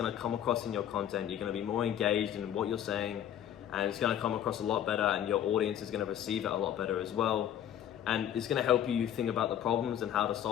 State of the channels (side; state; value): right; quieter; 10.5 dB